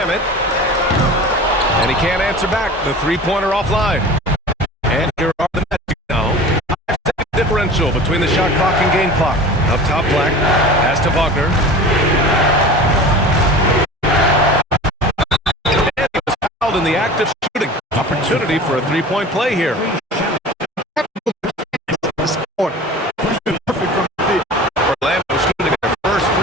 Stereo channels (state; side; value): normal; both; correlation 0.37